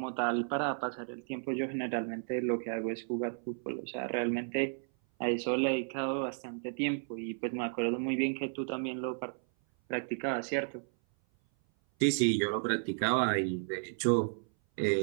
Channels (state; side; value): silent; left; 56 dB below the other